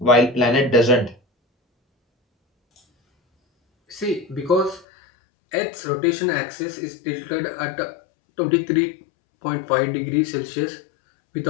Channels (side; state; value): right; drops out; at 4.9 s